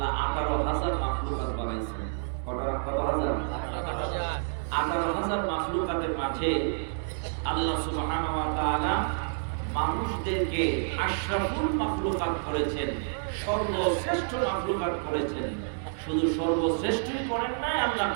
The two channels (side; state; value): left; silent; digital silence